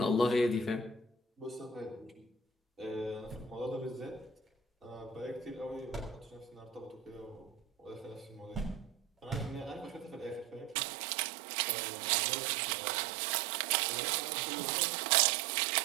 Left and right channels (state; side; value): drops out; left; at 10.8 s